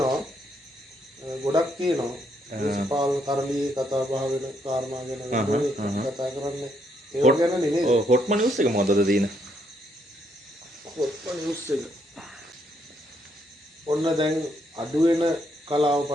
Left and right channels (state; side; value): normal; both; correlation 0.74